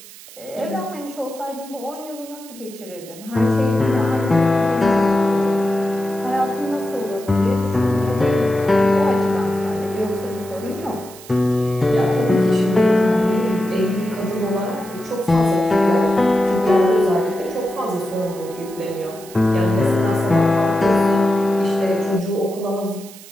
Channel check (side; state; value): right; noise; hiss, 19 dB below the sound